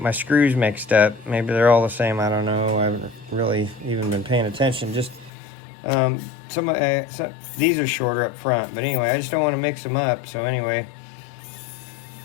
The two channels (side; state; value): right; drops out; at 5.3 s